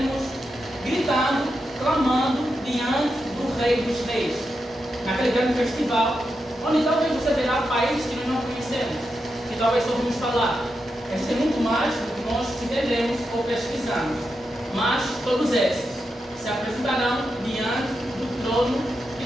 gritando, clamando diante do Rei dos Reis, naquele grande festival, onde talvez você verá países que nós não conhecemos, que talvez ouvimos falar. Existe muito mais do que nós entendemos ou pesquisamos, mas todos esses se apresentarão diante do trono de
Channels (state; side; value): normal; both; correlation 0.87